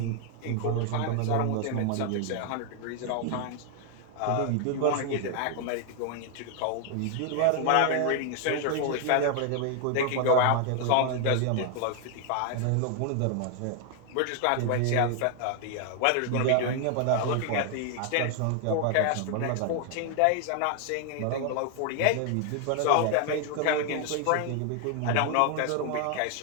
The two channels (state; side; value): different; both; correlation 0.00